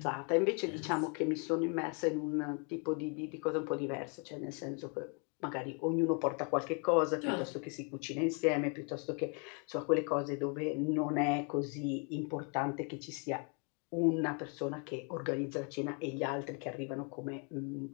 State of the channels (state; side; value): quieter; right; 37.1 dB